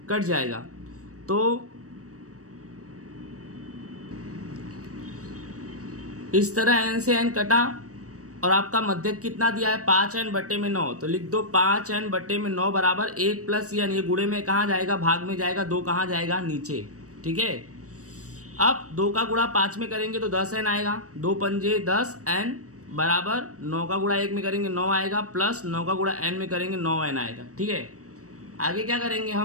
कट जाएगा। तो इस तरह n से n कटा, और आपका मध्यक कितना दिया है? 5n/9। तो लिख दो 5n/9 बराबर 1 + n। ये गुणे में कहाँ जाएगा? भाग में जाएगा। 2 कहाँ जाएगा? नीचे। ठीक है, अब 2 का गुणा 5 में करेंगे तो 10n आएगा। 2 पंजे 10n बराबर 9 का गुणा 1 में करेंगे 9 आएगा, प्लस 9 का गुणा n में करेंगे 9n आएगा। ठीक है, आगे क्या करेंगे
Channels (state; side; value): late; left; 0.66 ms